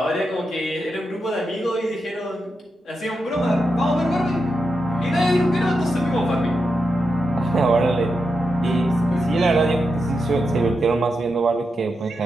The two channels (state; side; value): normal; both; correlation 0.87